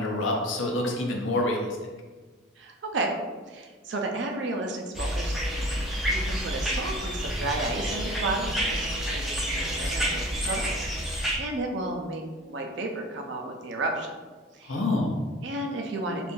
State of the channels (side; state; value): both; normal; correlation 0.39